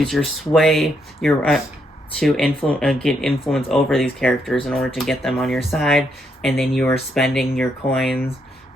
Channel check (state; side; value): normal; both; correlation 0.76